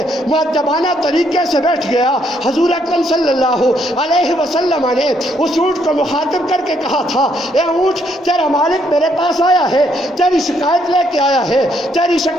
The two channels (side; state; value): both; normal; correlation 0.72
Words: مؤدبانہ طریقے سے بیٹھ گیا۔ حضور اکرم صلی اللہ علیہ وسلم نے اس اونٹ کو مخاطب کر کے کہا تھا، اے اونٹ تیرا مالک میرے پاس آیا ہے، تیری شکایت لے کے آیا ہے، تیری